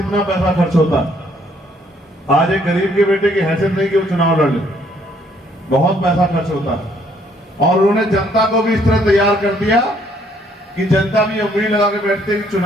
पैसा खर्च होता है। आज एक गरीब के बेटे की हैसियत नहीं कि वो चुनाव लड़ ले, बहुत पैसा खर्च होता है। और उन्होंने जनता को भी इस तरह तैयार कर दिया कि जनता भी उम्मीद लगा के बैठते कि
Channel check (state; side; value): normal; both; correlation 0.66